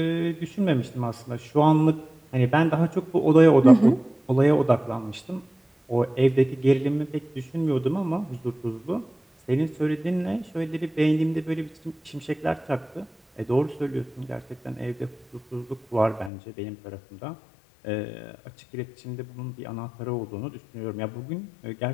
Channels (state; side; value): drops out; right; at 16.3 s